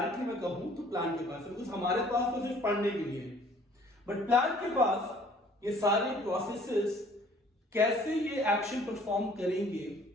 मैं कहूं तो प्लांट के पास है, बिकॉज हमारे पास तो सिर्फ पढ़ने के लिए है, बट प्लांट के पास ये सारे प्रोसेसेस कैसे ये एक्शन परफॉर्म करेंगे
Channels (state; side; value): normal; both; correlation 0.55